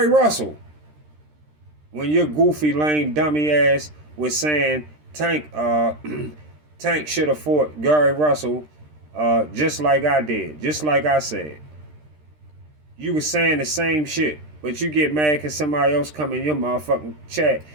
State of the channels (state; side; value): late; left; 13 ms